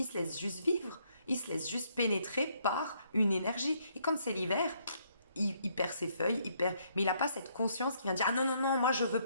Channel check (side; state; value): both; inverted; correlation -0.70